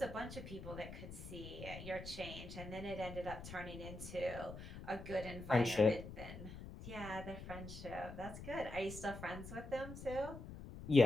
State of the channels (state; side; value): noise; left; rumble, 11 dB below the sound